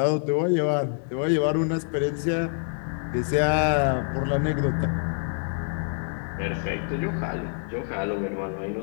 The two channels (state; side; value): silent; right; digital silence